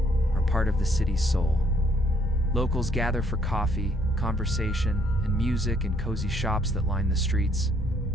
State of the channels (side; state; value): both; normal; correlation 0.67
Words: are part of the city's soul. Locals gather for coffee, conversation, and music in cozy shops that line the streets.